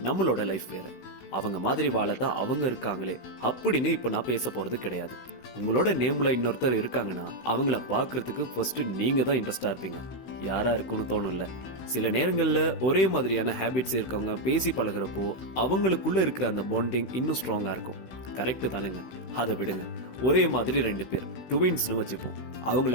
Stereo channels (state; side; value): late; right; 16 ms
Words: நம்மளோட லைஃப் வேற. அவங்க மாதிரி வாழத்தான் அவங்க இருக்காங்களே அப்படின்னு இப்ப நான் பேச போறது கிடையாது. உங்களோட நேம்ல இன்னொருத்தர் இருக்காங்கன்னா அவங்கள பாக்குறதுக்கு ஃபர்ஸ்ட் நீங்க தான் இன்ட்ரெஸ்டா இருப்பீங்க. யாரா இருக்குன்னு தோணும்ல. சில நேரங்கள்ல ஒரே மாதிரியான ஹேபிட்ஸ் இருக்கவங்க பேசி பழகுறப்போ அவங்களுக்குள்ள இருக்கிற அந்த பாண்டிங் இன்னும் ஸ்ட்ராங்கா இருக்கும். கரெக்ட் தானேங்க? அதை விடுங்க. ஒரே மாதிரி ரெண்டு பேர் ட்வின்ஸ்னு வச்சுப்போம். அவங்கள